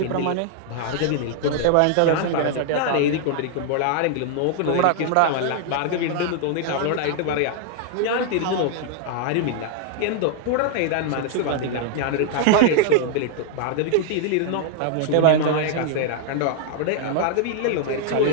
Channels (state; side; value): different; both; correlation 0.00